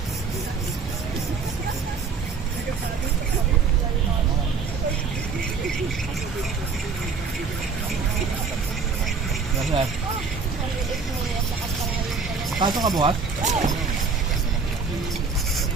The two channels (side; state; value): left; quieter; 5.0 dB